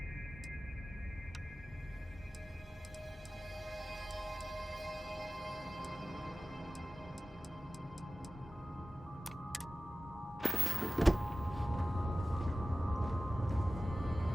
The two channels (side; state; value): both; normal; correlation 0.96